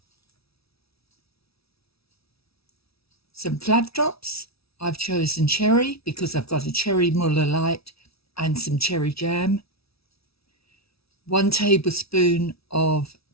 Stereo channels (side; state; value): right; late; 0.77 ms